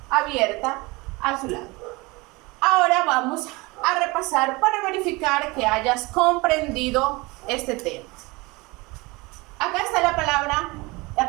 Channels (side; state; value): left; quieter; 24.2 dB